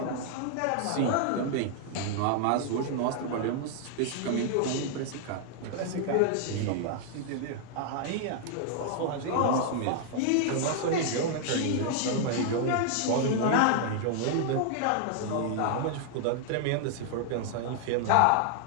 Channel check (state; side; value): different; both; correlation 0.00